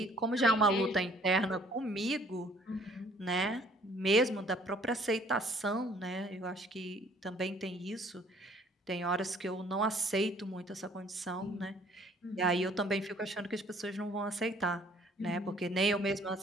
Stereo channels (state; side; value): normal; both; correlation 0.58